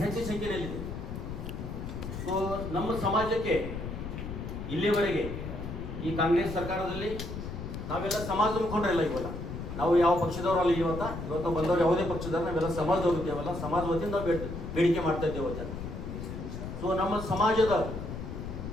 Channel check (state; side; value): noise; left; rumble, 7 dB below the sound